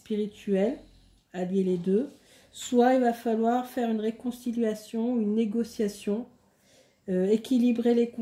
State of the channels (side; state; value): both; identical; correlation 1.00